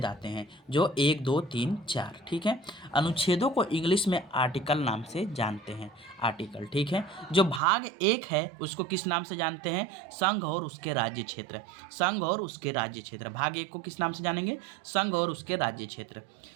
आते हैं, जो 1, 2, 3, 4। ठीक है। अनुच्छेदों को इंग्लिश में आर्टिकल नाम से जानते हैं। आर्टिकल, ठीक है। जो भाग एक है उसको किस नाम से जानते हैं? संघ और उसके राज्य क्षेत्र। संघ और उसके राज्य क्षेत्र। भाग एक को किस नाम से जानेंगे? संघ और उसके राज्य क्षेत्र।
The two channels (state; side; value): drops out; left; at 7.6 s